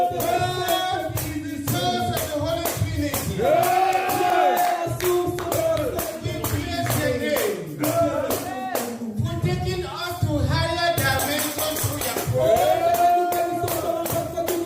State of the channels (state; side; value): identical; both; correlation 1.00